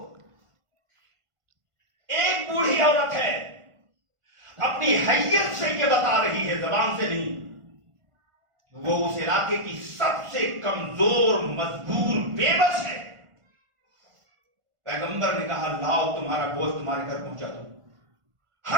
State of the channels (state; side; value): late; left; 1.5 ms